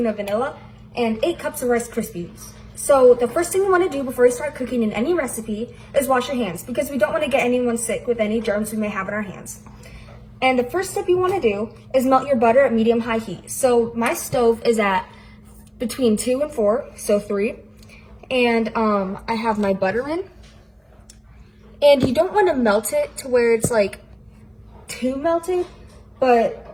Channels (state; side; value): identical; both; correlation 1.00